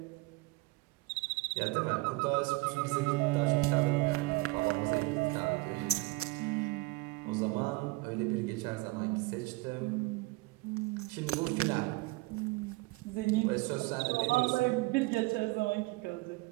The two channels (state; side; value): quieter; left; 22.8 dB